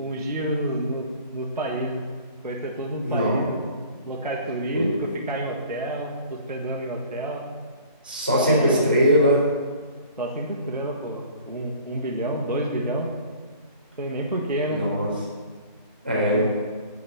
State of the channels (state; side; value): inverted; both; correlation -0.48